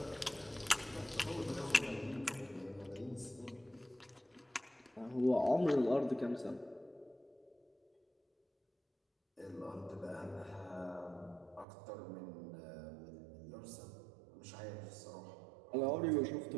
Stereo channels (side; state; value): left; drops out; at 11.7 s